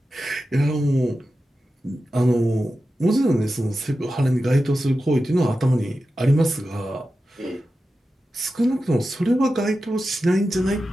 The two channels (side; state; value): both; normal; correlation 0.92